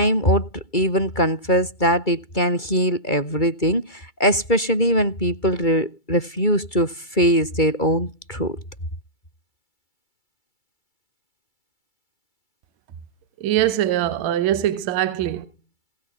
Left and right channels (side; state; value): right; late; 2.3 ms